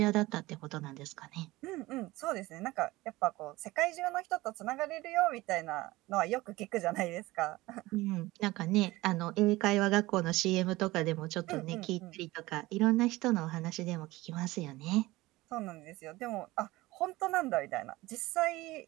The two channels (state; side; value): quieter; left; 19.4 dB